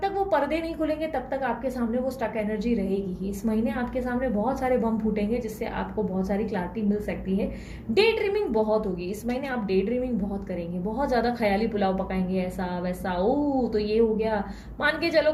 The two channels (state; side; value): identical; both; correlation 1.00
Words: तक वो पर्दे नहीं खुलेंगे तब तक आपके सामने वो स्टक एनर्जी रहेगी ही। इस महीने आपके सामने बहुत सारे बम फूटेंगे जिससे आपको बहुत सारी क्लैरिटी मिल सकती है। डे ड्रीमिंग बहुत होगी इस महीने, आप डे ड्रीमिंग बहुत करेंगे, बहुत ज्यादा ख्याली पुलाव पकाएंगे, ऐसा वैसा, ओ तो ये हो गया, मान के चलो